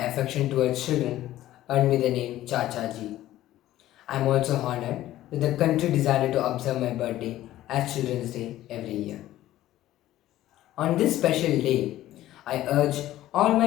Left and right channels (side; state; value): right; quieter; 14.4 dB